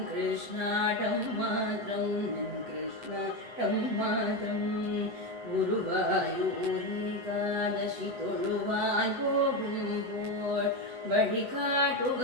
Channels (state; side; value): late; left; 8.0 ms